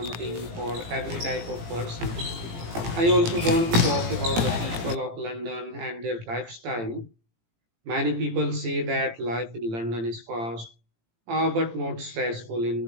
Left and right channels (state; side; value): late; left; 18 ms